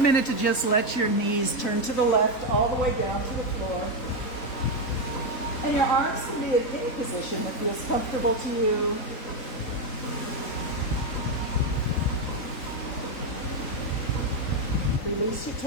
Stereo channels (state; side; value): late; right; 3.9 ms